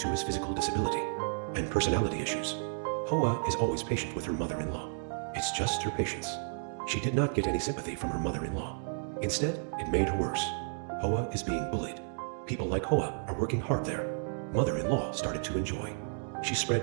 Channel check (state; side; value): silent; left; digital silence